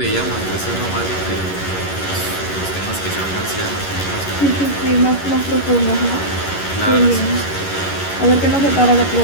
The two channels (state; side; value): late; right; 11 ms